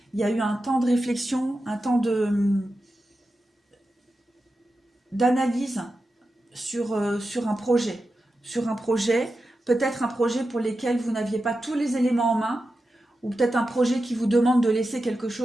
Il y a eu un temps de réflexion, un temps d'analyse sur un projet. Sur un projet, peut-être un projet pour lequel vous n'aviez pas tous les éléments en main, ou peut-être un projet qui vous demande de laisser quelque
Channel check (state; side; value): normal; both; correlation 0.91